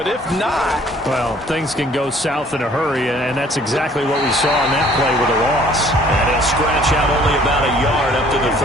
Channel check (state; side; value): normal; both; correlation 0.57